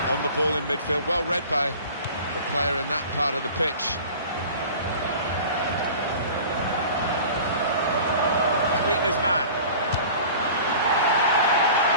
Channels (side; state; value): both; inverted; correlation -0.41